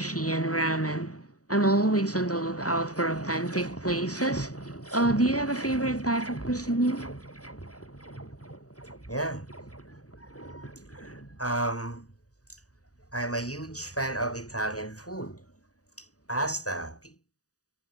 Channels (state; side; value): late; right; 0.67 ms